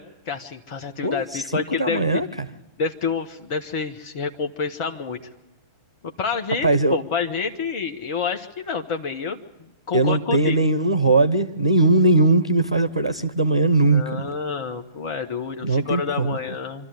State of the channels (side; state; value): both; inverted; correlation -0.51